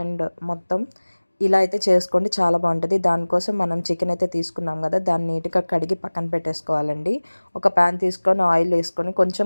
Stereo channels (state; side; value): inverted; both; correlation -1.00